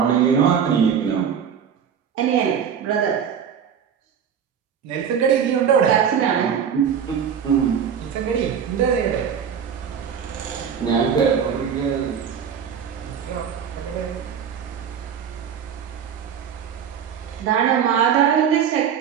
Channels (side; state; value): left; quieter; 7.8 dB